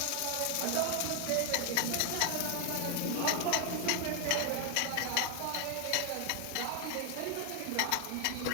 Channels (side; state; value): both; different; correlation 0.00